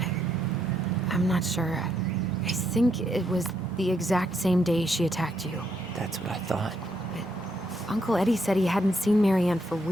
I'm not sure. I think it was the exact same day she attacked you. That's what I thought. But Uncle Eddie said he hadn't seen Marianne for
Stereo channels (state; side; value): normal; both; correlation 0.76